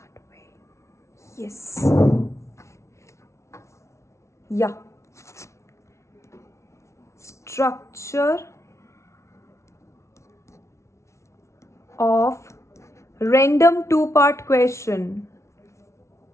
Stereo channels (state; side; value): late; right; 0.13 ms